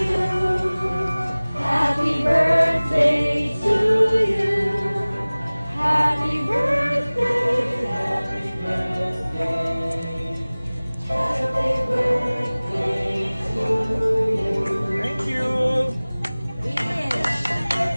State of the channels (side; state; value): both; inverted; correlation -0.99